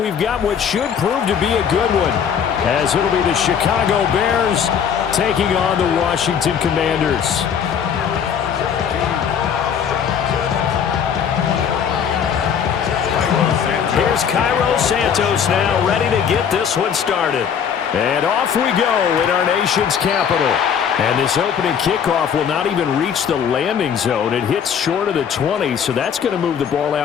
got what should prove to be a good one, as it'll be the Chicago Bears taking on the Washington Commanders. Here's Cairo Santos now, ready to get this one started. And off we go in our nation's capital. And this opening kickoff will not even reach the landing zone. It hits short of the 20, so that's going to move the ball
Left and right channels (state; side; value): quieter; right; 7.7 dB